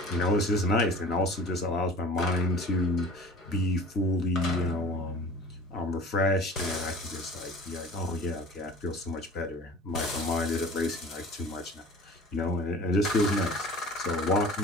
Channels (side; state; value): both; normal; correlation 0.43